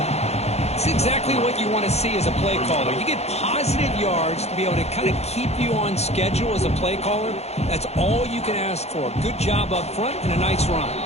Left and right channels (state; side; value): late; right; 0.31 ms